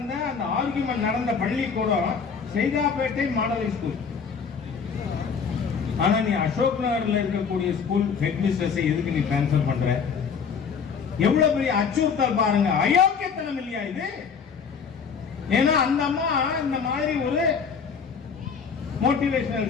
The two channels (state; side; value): quieter; right; 6.1 dB